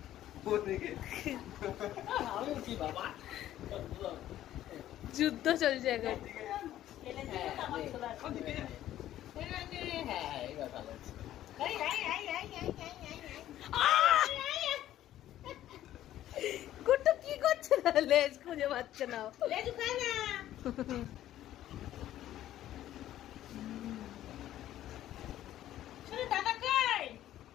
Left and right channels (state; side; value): quieter; right; 12.9 dB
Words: যুদ্ধ চলছে এখন। কুট্টু কি করছে না, লেজ খুঁজে পাচ্ছে না।